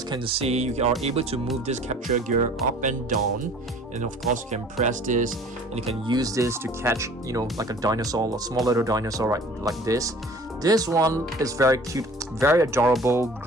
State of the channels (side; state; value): both; normal; correlation 0.48